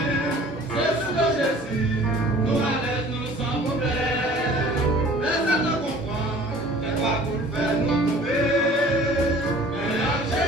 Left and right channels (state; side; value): normal; both; correlation 0.48